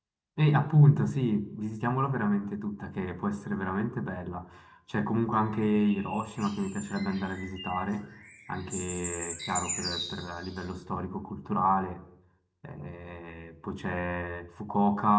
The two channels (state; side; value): identical; both; correlation 1.00